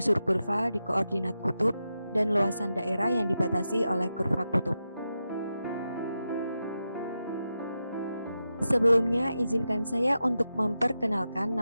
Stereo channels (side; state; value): both; inverted; correlation -0.89